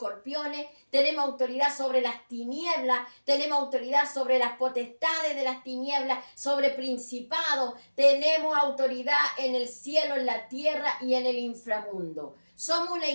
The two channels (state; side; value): inverted; both; correlation -1.00